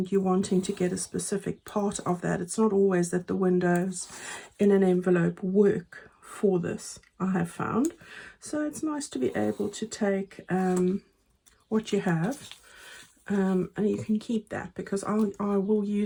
you're wanting to get a specific part of that, it's not always that the windows in an envelope work for this, I have found. So it's nice to be able to take what you have, and you can keep that, because I will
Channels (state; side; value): identical; both; correlation 1.00